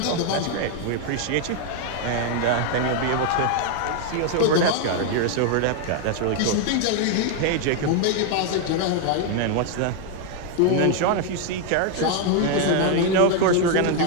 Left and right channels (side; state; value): both; different; correlation 0.00